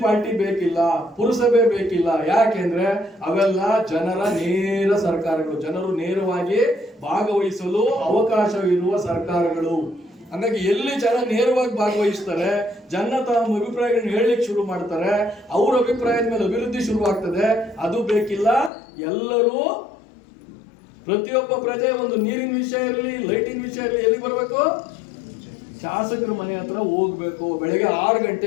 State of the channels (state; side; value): drops out; right; at 18.7 s